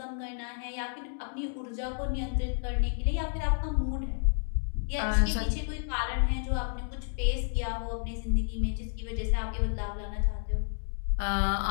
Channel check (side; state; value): right; silent; digital silence